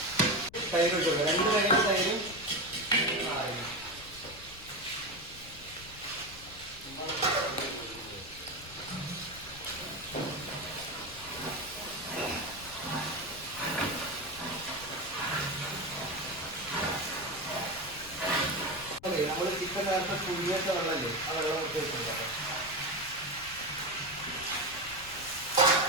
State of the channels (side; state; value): left; noise; rumble, 18 dB below the sound